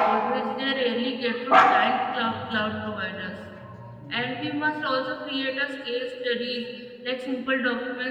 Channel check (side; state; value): both; identical; correlation 1.00